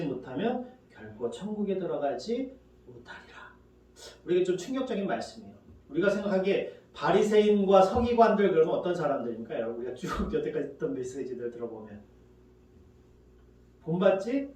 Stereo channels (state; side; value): identical; both; correlation 1.00